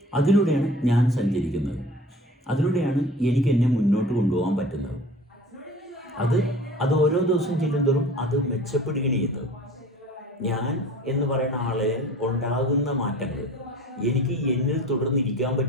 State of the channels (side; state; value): both; normal; correlation 0.43